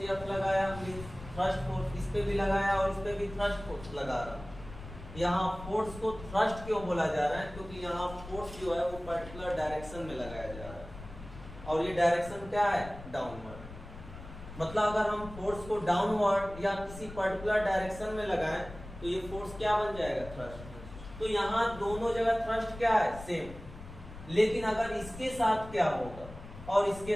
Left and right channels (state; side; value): noise; left; rumble, 14 dB below the sound